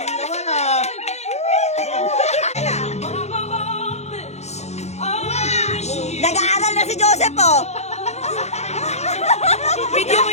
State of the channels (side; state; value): right; late; 0.32 ms